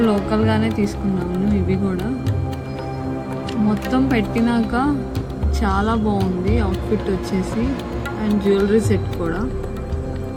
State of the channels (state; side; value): identical; both; correlation 1.00